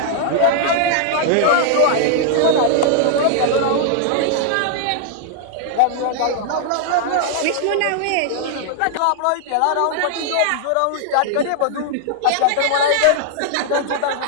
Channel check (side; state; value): both; different; correlation -0.01